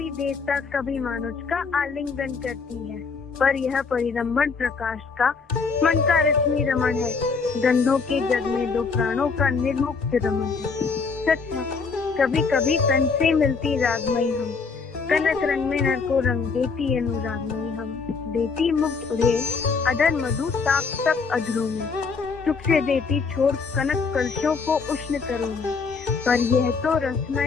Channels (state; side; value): quieter; right; 4.9 dB